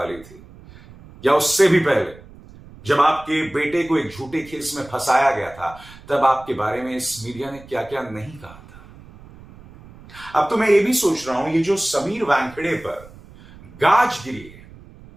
थी, या उससे भी पहले जब आपके बेटे को एक झूठे केस में फंसाया गया था, तब आपके बारे में इस मीडिया ने क्या क्या नहीं कहा था। अब तो मैं ये भी सोच रहा हूं, ये जो समीर वानखेड़े पर गाज गिरी है,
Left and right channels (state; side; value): noise; right; rumble, 21 dB below the sound